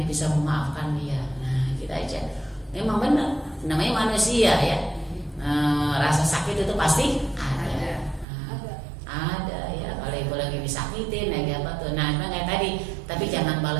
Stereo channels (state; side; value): drops out; left; at 8.2 s